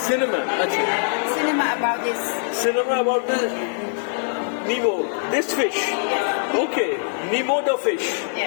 Cinema. আচ্ছা, Cinema about this. cinema about the Nemo, this fish. Okay, Nemo the fish.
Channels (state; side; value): silent; right; digital silence